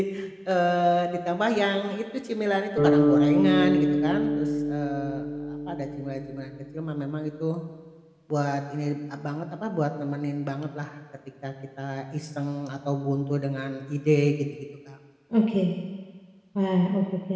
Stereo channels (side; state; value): both; identical; correlation 1.00